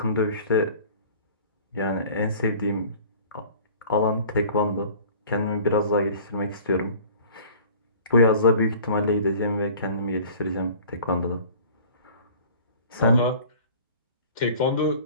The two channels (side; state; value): both; inverted; correlation -0.46